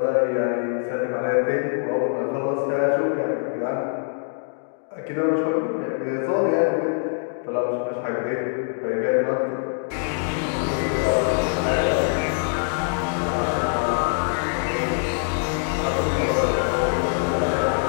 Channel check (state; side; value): silent; right; digital silence